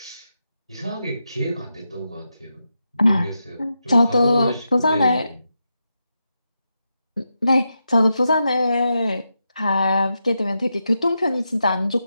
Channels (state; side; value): inverted; both; correlation -0.87